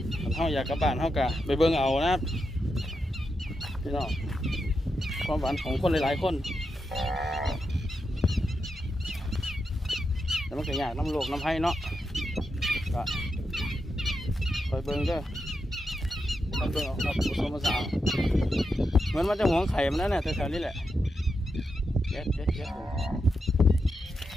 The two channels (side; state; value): both; normal; correlation 0.86